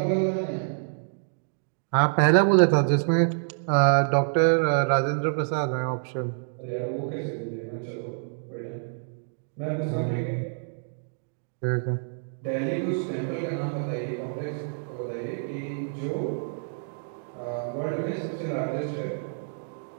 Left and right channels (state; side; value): silent; left; digital silence